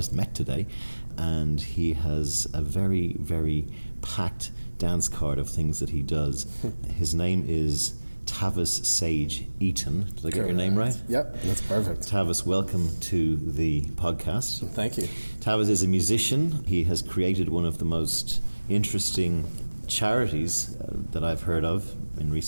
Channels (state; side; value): inverted; both; correlation -1.00